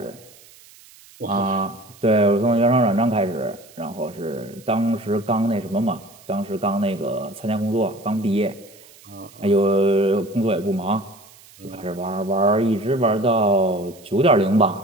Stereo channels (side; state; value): right; noise; hiss, 24 dB below the sound